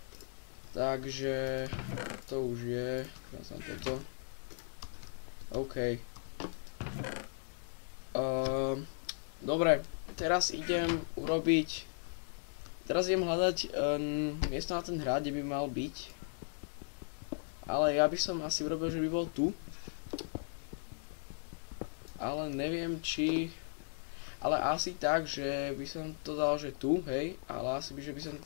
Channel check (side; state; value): right; silent; digital silence